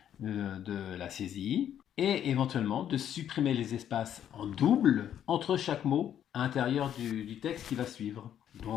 de la saisie, et éventuellement de supprimer les espaces en double entre chaque mot à l'intérieur du texte qui va suivre.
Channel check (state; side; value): quieter; right; 10.0 dB